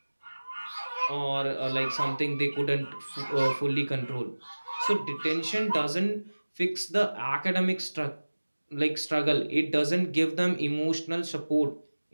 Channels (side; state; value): both; inverted; correlation -1.00